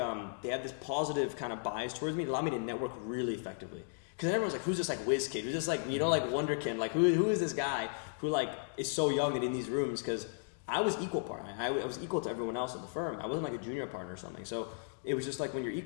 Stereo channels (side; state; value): right; silent; digital silence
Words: have this positive kind of bias towards me. It allowed me to network really effectively. Because everyone's who's this whiz kid? Who's this wonderkin? Who is this guy who is so young and in these rooms? Because I was equal partner. I was equal to everyone else in the firm. I wasn't a junior partner or something. So it was just when you're